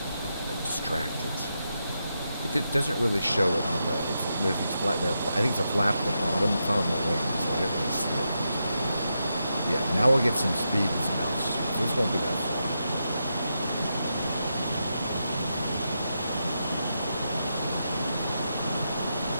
distracted. It doesn't really show it on the. There's these flat there. I think it's a flap at the bottom. It's not on the wing, so I didn't really see it. Yeah, now we'll get some speed and some altitude. So this won't be that far.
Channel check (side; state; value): both; inverted; correlation -0.85